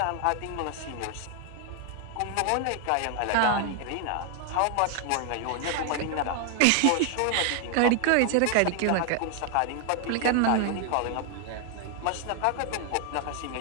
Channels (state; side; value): different; both; correlation 0.00